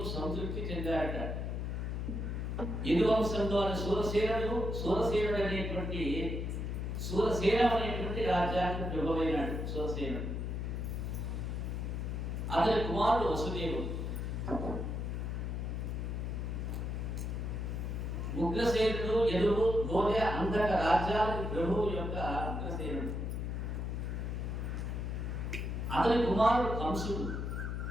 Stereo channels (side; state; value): left; noise; hum, 2 dB below the sound